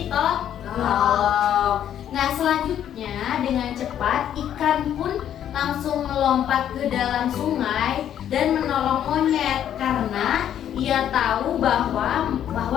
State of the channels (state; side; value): quieter; right; 10.2 dB